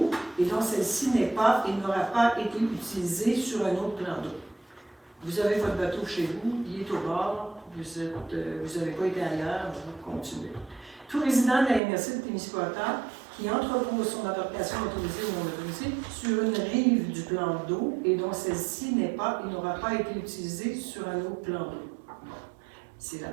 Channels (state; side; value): drops out; left; at 11.8 s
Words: et dont celle-ci n'est pas et n'aura pas été utilisée sur un autre plan d'eau. Vous avez votre bateau chez vous, il est au bord, vous n'avez pas été ailleurs, vous continuez. Tout résident de la MRC de Témiscouata qui entrepose son embarcation motorisée ou non motorisée sur une rive du plan d'eau et dont celle-ci n'est pas et n'aura pas été utilisée sur un autre plan d'eau. C'est la